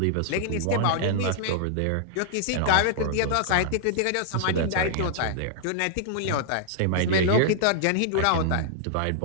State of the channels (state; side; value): different; both; correlation -0.01